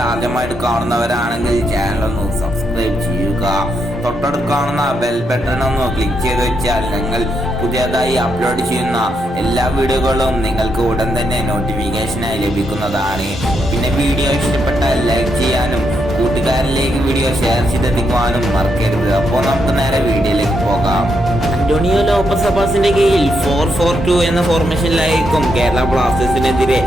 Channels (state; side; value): normal; both; correlation 0.80